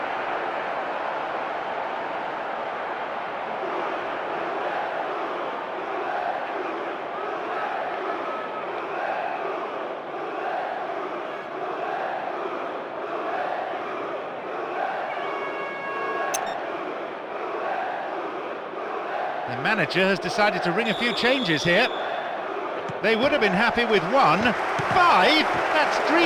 The manager has decided to ring a few changes here. They would have been happy with 1. 5? That's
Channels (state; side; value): identical; both; correlation 1.00